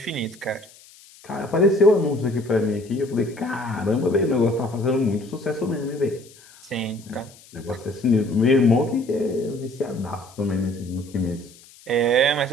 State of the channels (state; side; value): noise; left; hiss, 24 dB below the sound